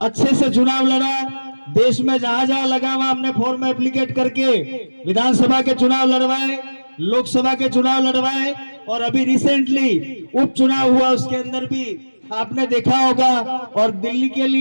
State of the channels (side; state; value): both; inverted; correlation -1.00